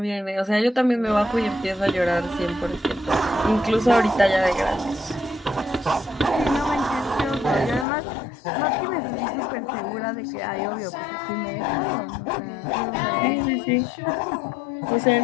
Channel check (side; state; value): right; drops out; at 7.9 s